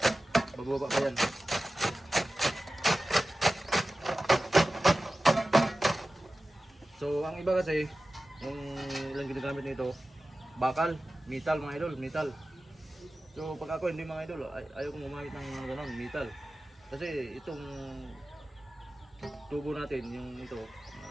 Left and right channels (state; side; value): normal; both; correlation 0.96